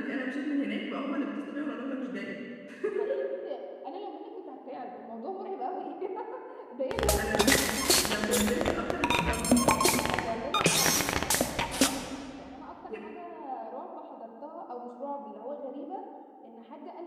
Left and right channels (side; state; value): both; identical; correlation 1.00